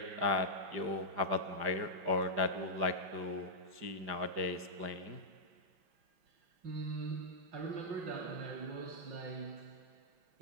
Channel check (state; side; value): late; left; 5.0 ms